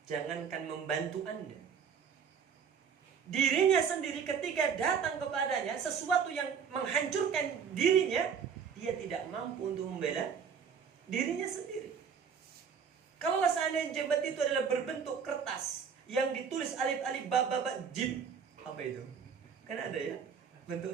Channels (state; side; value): quieter; left; 6.8 dB